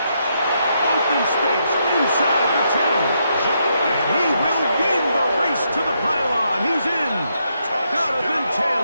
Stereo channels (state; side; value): inverted; both; correlation -0.78